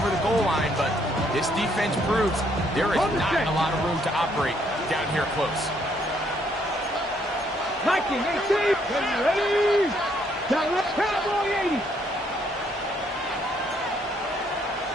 the goal line, but this defense proves there is not a lot of room to operate down here close. Viking 18. Ready. Cowboy 80.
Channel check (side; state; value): both; normal; correlation 0.69